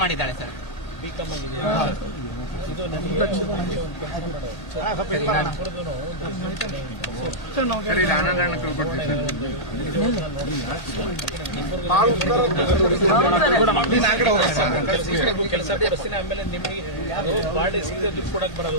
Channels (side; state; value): right; late; 1.8 ms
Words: ಮಾಡಿದ್ದಾಳೆ ಸರ್. ಬಿಕಾಮ್ ಆಗಿದೆಯಾ? ಇದು ನನಗೆ ಕೆಲಸ ಕೊಡಿಸ್ತೀನಿ. ಆಮೇಲೆ ನಿಮಗೆ ಅದು ಬಾಡಿ ಸಿಗದೆ ದುಡ್ಡು ಕೊಡಕ್